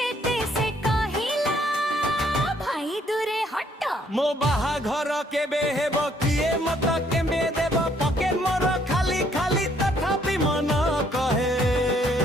से कहिला भाई दूरे हट मो बाहाघर केबे हेबो किए मत केबे देबो पकेट मोर खाली खाली तथापि मन कहे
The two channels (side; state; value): both; normal; correlation 0.66